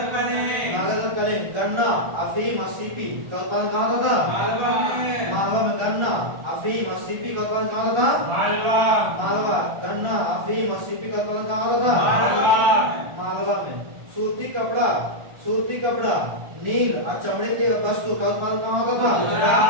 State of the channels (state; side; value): late; left; 1.4 ms